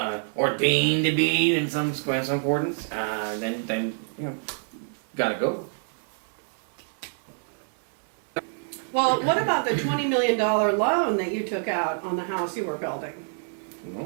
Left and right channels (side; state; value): left; silent; digital silence